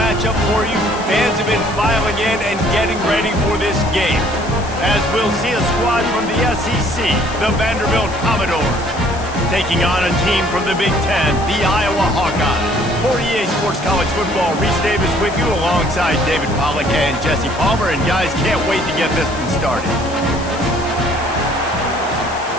for you. Fans have been filing in and getting ready for this game, as we'll see a squad from the SEC, the Vanderbilt Commodores, taking on a team from the Big Ten, the Iowa Hawkeyes. For EA Sports College Football, Reese Davis with you alongside David Pollack and Jesse Palmer. And guys, can't wait to get this one started.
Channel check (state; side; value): noise; left; hiss, 17 dB below the sound